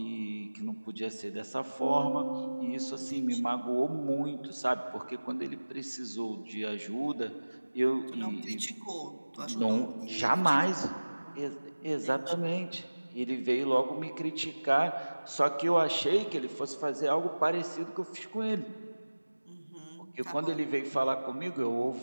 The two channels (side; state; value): both; inverted; correlation -1.00